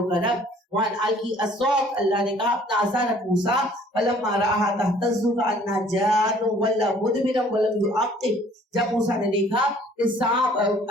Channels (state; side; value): normal; both; correlation 0.56